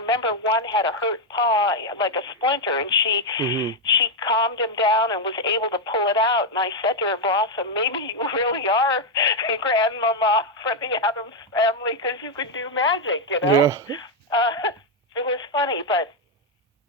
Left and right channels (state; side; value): normal; both; correlation 0.02